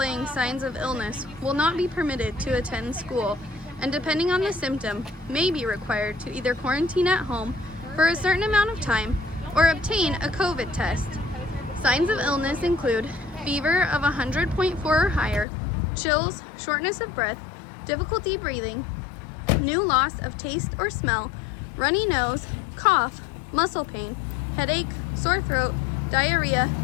signs of illness will not be permitted to attend school, and depending on the symptom, may be required to either quarantine at home for a certain amount of time or obtain a COVID test. Signs of illness include fever of 100.4 or higher, chills, shortness of breath, difficulty breathing, new loss of taste or smell, runny nose, cough, muscle pain, headache, sore throat, diarrhea,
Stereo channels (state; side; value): drops out; right; at 15.5 s